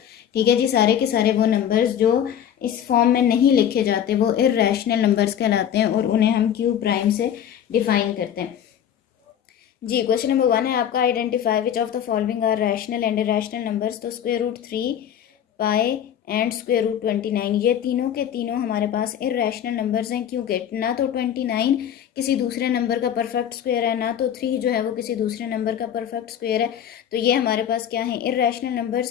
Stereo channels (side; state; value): right; quieter; 9.7 dB